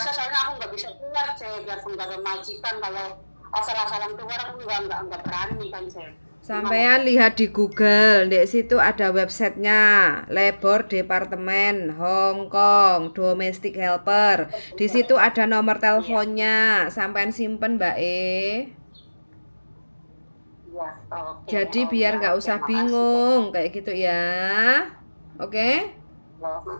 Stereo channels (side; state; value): both; inverted; correlation -1.00